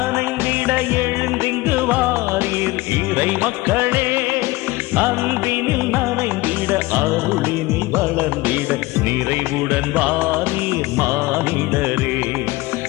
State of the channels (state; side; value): quieter; right; 20.6 dB